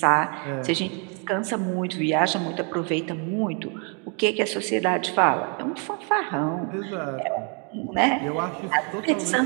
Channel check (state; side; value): quieter; left; 37.8 dB